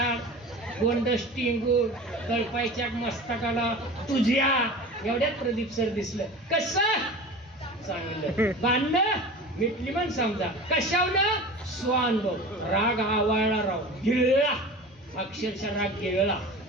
गोंड स्टिंगूड, कळपायच्या मस्तकाला तुझ्या एवढ्यात प्रदीप सर दिसलं. कसं चांगलं. भांडणं मिटली म्हण समजा. कशावनं? स्वानुभव. राग आवाळला, राव गिळला, अक्षरशः राग गिळला.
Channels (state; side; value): normal; both; correlation 0.35